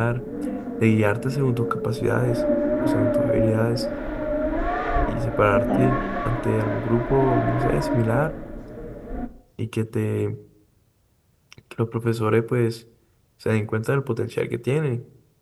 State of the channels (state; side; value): identical; both; correlation 1.00